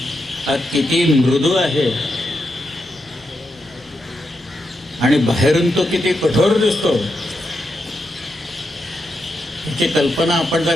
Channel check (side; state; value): both; normal; correlation 0.85